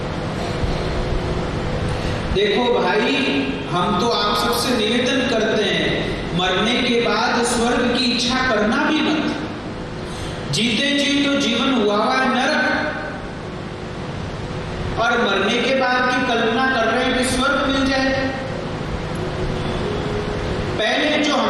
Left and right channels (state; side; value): identical; both; correlation 1.00